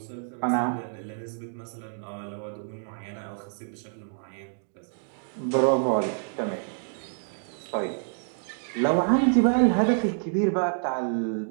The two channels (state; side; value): silent; left; digital silence